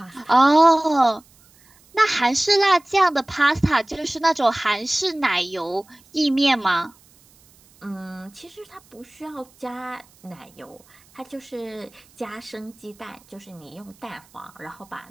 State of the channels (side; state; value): right; noise; hiss, 29 dB below the sound